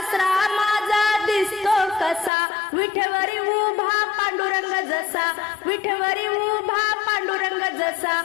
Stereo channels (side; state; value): right; drops out; at 2.3 s